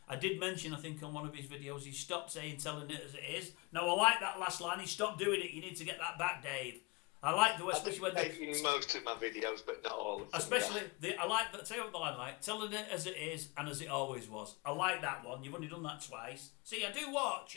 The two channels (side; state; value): right; quieter; 26.7 dB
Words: I did mention, I think, on one of his videos, he stopped telling it as it is. Now, I like that last line. He stopped doing it. You need to get that back, Dave. I like the way, I've especially been when making most of my videos, but not all of them. especially I like that. Tell you what I like, telling it as it is and as it always was. I like that one. You've only done that twice. See, I do watch